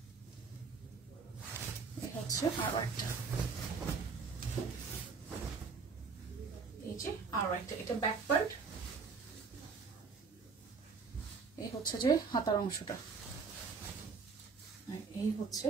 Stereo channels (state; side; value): quieter; left; 5.0 dB